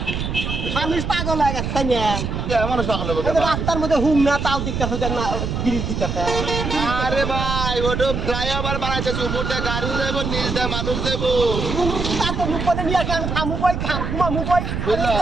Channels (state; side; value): noise; right; rumble, 3 dB below the sound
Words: মানুষ পাগল হয়ে গেছে তাই না? আমার সকালে বলতে এই যে রাস্তার মধ্যে হুম না তাও দিকতেছে দেখ না ব্রিজ দিকতেছে। আরে ভাই ওটা ফ্লাইওভার বানাইতেছে উপর দিয়ে গাড়ি দেবো নিচ দিয়ে মানুষ দেবো তার তো মুখ করে নিয়ে আসে আমি খামু কই ঘুমামু কই